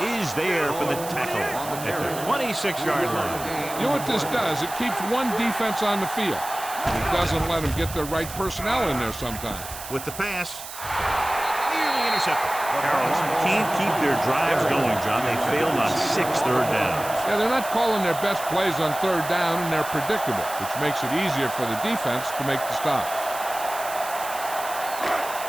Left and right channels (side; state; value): right; noise; hiss, 11 dB below the sound